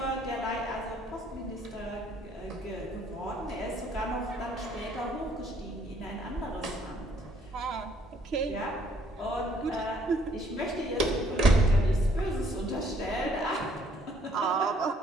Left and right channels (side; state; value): both; normal; correlation 0.64